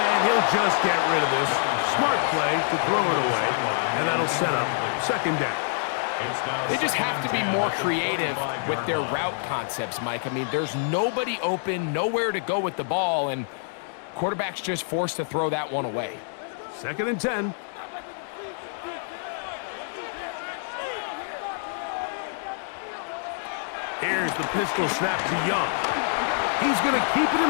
he'll just get rid of this. Smart play to throw it away, and that'll set up 2nd down. They just have to be more creative with their route concepts, Mike. I mean, there's nobody open, nowhere to go with the ball, and quarterback's just forced to throw that one away. 2nd and 10. Here's the pistol snap to Young. He's going to keep it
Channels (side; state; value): right; silent; digital silence